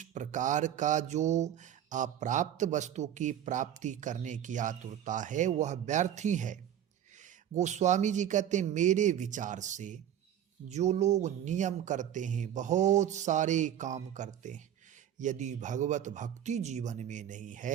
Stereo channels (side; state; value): left; quieter; 10.4 dB